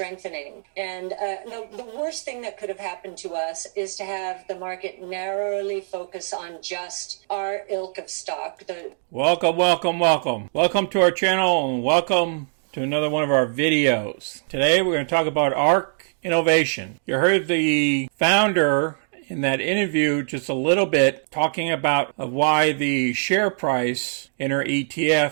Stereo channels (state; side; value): silent; left; digital silence